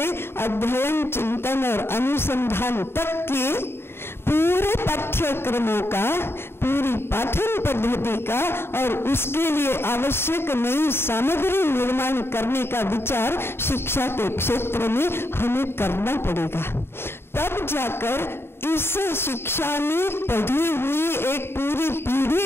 अध्ययन, चिंतन और अनुसंधान तक के पूरे पाठ्यक्रमों का, पूरी पाठन पद्धति का और उसके लिए आवश्यक नई सामग्री निर्माण करने का विचार शिक्षा के क्षेत्र में हमें करना पड़ेगा। तब जाकर इस शिक्षा में पढ़ी हुई एक पूरी पीढ़ी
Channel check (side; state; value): right; late; 0.11 ms